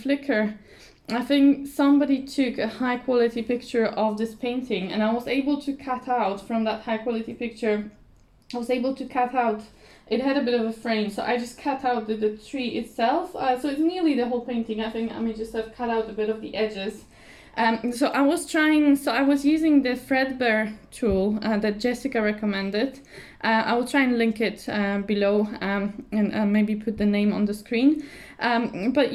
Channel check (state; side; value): identical; both; correlation 1.00